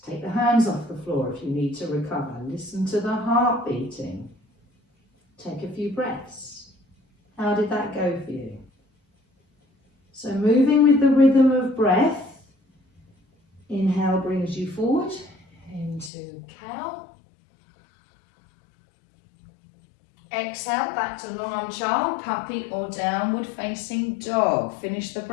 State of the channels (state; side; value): drops out; right; at 16.1 s